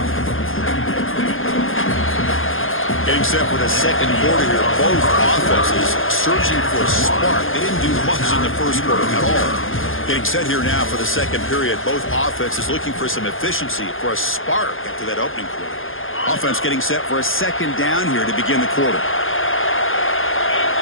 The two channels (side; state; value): right; late; 0.59 ms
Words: Getting set for the second quarter here. Both offenses searching for a spark. They didn't do much in the first quarter at all. Getting set here now for the second period. Both offenses looking for some efficiency, for a spark after that opening quarter. Offense getting set for a second down here to begin the quarter.